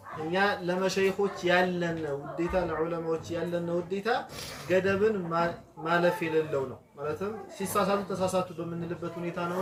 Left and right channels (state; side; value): identical; both; correlation 1.00